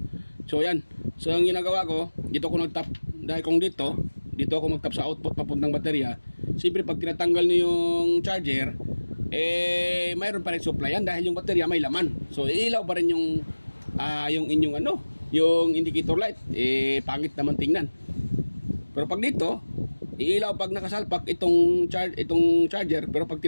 So yan. So ang ginagawa ko, dito ako nag-tap. Dahil kung dito ako mag-tap sa output papuntang baterya. Siyempre pag tinatanggal niyo yung charger, mayroon pa rin supply yan dahil yung baterya may laman. So iilaw pa rin yung inyong yung indicator light. Pangit naman tingnan. Pero pag dito, iilaw pag nakasalpak itong charger, pero pag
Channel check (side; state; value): both; inverted; correlation -1.00